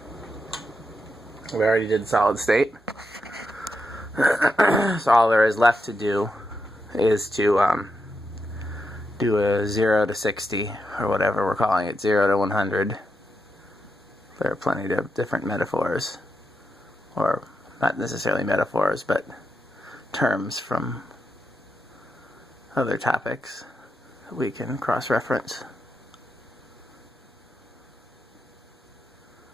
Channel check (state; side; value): normal; both; correlation 0.85